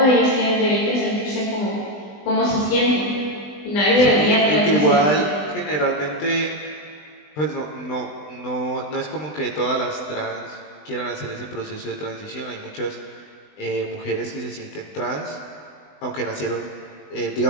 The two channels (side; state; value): right; late; 20 ms